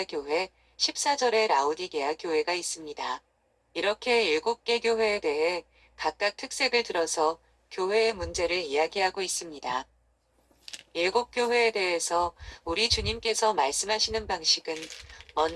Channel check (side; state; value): both; identical; correlation 1.00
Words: 교회, 14절에 라오디게아 교회가 있습니다. 이렇게 7개 교회에 대해 각각 특색을 들어서 교회의 문제를 이야기하고 있습니다. 7교회에 대해서 우리 주님께서 말씀하시는 방식은